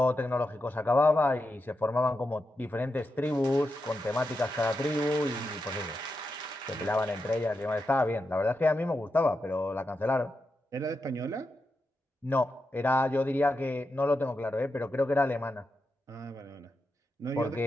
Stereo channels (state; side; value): normal; both; correlation 0.87